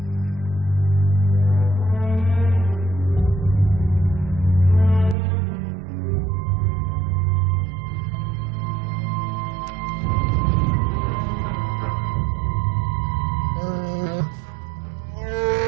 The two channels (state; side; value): drops out; left; at 5.2 s